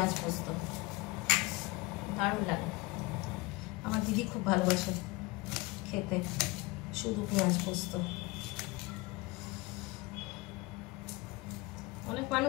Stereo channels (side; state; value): right; quieter; 22.9 dB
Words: পোস্ত দারুণ লাগে। আমার দিদি খুব ভালোবাসে খেতে শুধু পেঁয়াজ পোস্ত। অনেক